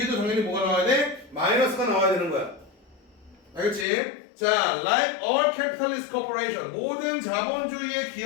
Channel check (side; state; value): right; drops out; at 3.9 s